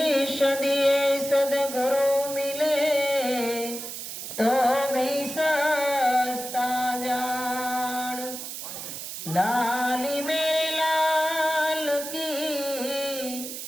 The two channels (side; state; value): right; noise; hiss, 8 dB below the sound